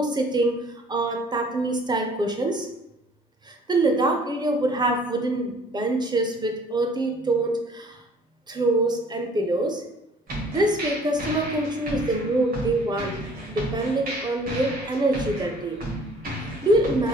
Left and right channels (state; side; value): normal; both; correlation 0.55